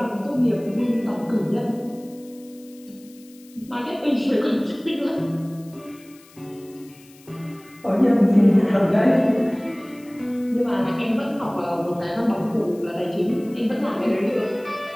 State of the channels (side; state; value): left; noise; hiss, 26 dB below the sound